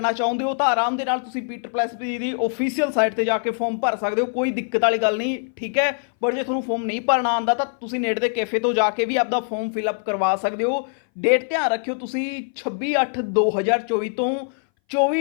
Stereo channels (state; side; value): silent; right; 60 dB below the other